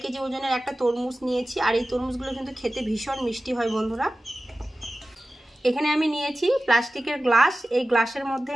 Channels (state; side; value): normal; both; correlation 0.95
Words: কেজি ওজনের একটা তরমুজ নিয়েছি। আর এই তরমুজগুলো কিন্তু খেতে ভীষণ মিষ্টি হয় বন্ধুরা। এখানে আমি নিয়েছি প্লাস্টিকের গ্লাস, এই গ্লাসের মধ্যে